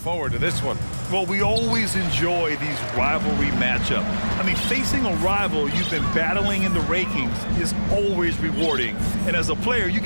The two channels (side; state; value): both; inverted; correlation -1.00